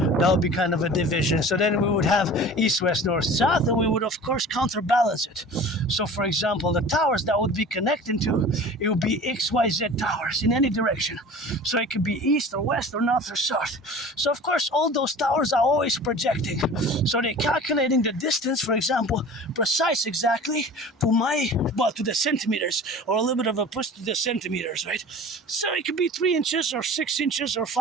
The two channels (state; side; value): normal; both; correlation 0.40